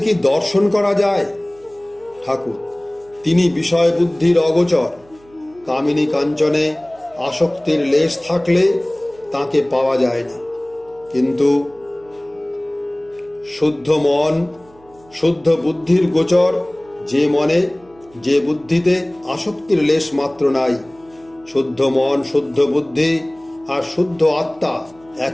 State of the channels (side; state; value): right; noise; hum, 28 dB below the sound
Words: কি দর্শন করা যায়? ঠাকুর, তিনি বিষয় বুদ্ধির অগোচর। কামিনী কাঞ্চনে আসক্তির লেশ থাকলে তাকে পাওয়া যায় না। কিন্তু শুদ্ধ মন, শুদ্ধ বুদ্ধির গোচর যে মনে, যে বুদ্ধিতে আসক্তির লেশ মাত্র নাই। শুদ্ধ মন, শুদ্ধ বুদ্ধি আর শুদ্ধ আত্মা